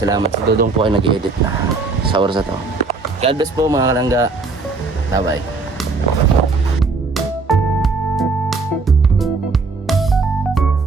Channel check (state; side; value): quieter; left; 4.0 dB